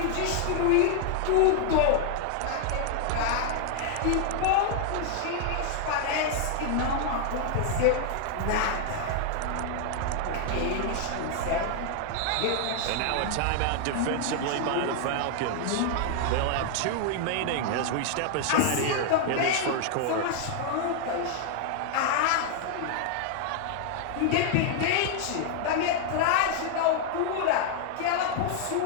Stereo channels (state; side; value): different; both; correlation 0.00